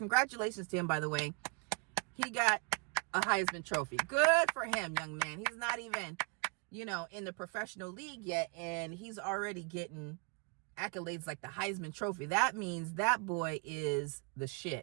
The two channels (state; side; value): quieter; left; 34.8 dB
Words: to him, by the way. He got a Heisman Trophy. Good for him, young man. He's not even, you know, in the professional league yet, and he's already getting accolades like the Heisman Trophy. That means that boy is the